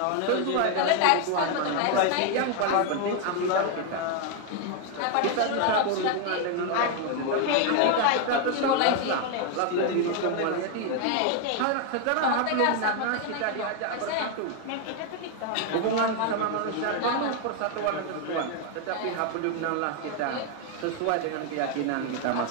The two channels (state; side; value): different; both; correlation 0.01